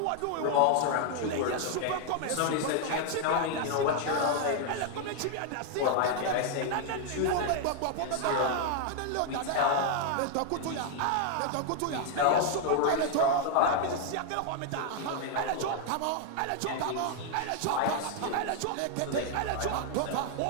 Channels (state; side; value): different; both; correlation 0.00